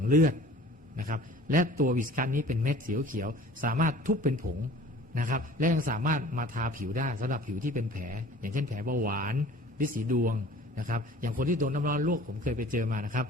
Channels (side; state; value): both; normal; correlation 0.46